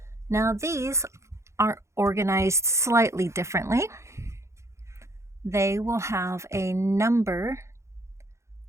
Now these are organized slightly differently. They will have a number.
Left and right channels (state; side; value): late; left; 0.14 ms